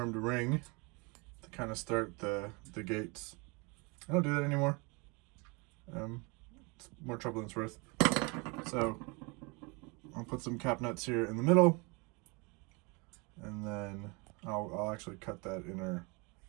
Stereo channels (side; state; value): left; quieter; 29.4 dB